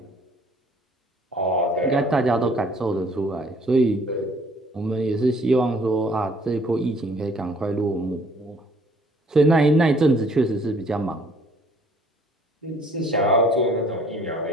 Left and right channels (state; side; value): normal; both; correlation 0.59